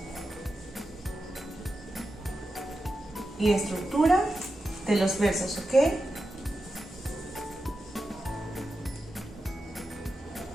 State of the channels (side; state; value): both; normal; correlation 0.90